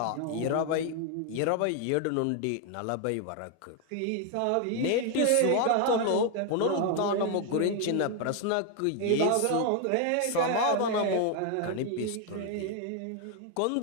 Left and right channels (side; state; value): both; different; correlation 0.01